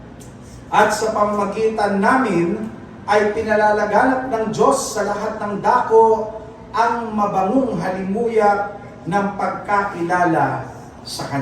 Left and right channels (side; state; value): both; identical; correlation 1.00